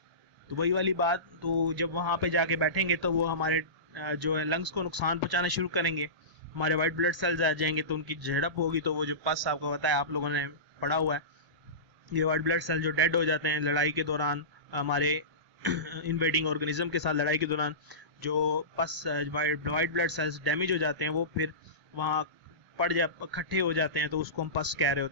तो वही वाली बात। तो जब वहाँ पे जाके बैठेंगे तो वो हमारे जो है लंग्स को नुकसान पहुँचाना शुरू करेंगे, हमारे वाइट ब्लड सेल्स आ जाएंगे, तो उनकी झड़प होगी। तो वो जो पस आपको पता है, आप लोगों ने पढ़ा हुआ है, ये वाइट ब्लड सेल जो डेड हो जाते हैं लड़ाई के दौरान, हमारे इन्वेडिंग ऑर्गेनिज्म के साथ लड़ाई के दौरान जो पस वाइट ब्लड सेल्स डैमेज हो जाते हैं वो फिर वहाँ इकट्ठे हो जाते हैं, तो उसको हम पस कह रहे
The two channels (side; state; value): left; late; 1.0 ms